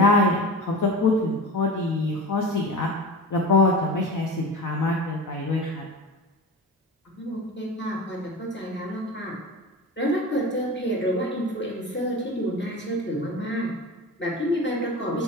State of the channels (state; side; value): normal; both; correlation 0.31